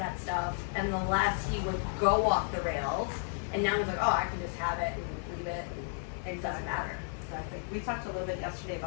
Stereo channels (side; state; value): right; silent; 56 dB below the other